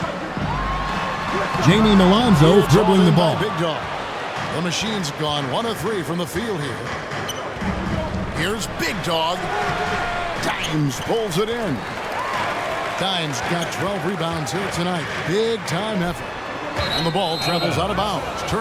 Jamie Milonzo dribbling the ball. Big Dog. The machine's gone 1 of 3 from the field here. Here's Big Dog. Dimes pulls it in. Dimes got 12 rebounds here tonight. Big time effort. And the ball travels out of bounds.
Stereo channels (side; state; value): both; identical; correlation 1.00